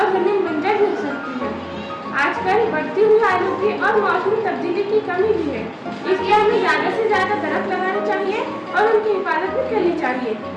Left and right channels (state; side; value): identical; both; correlation 1.00